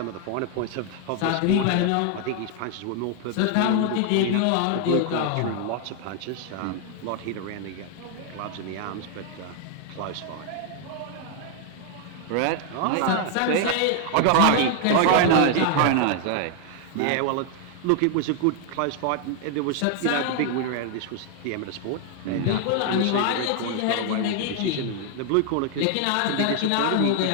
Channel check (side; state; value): both; different; correlation 0.00